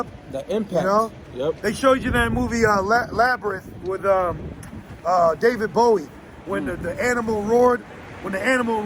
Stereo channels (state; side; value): identical; both; correlation 1.00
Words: the impact. You know, Yep. they showed you that movie Labyrinth with David Bowie when the animal roared. When the animal